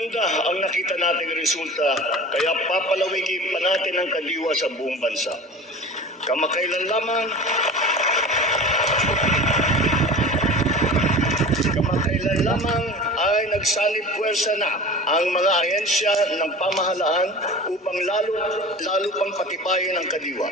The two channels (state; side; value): normal; both; correlation 0.37